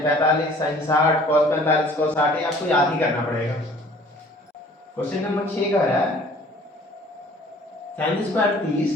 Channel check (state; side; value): normal; both; correlation 0.52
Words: 45, sine 60, cos 45, cos 60, ये आपको याद ही करना पड़ेगा। क्वेश्चन नंबर 6 कह रहा है sine square 30